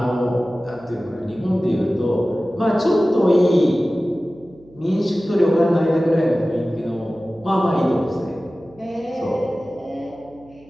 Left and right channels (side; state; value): right; noise; hum, 26 dB below the sound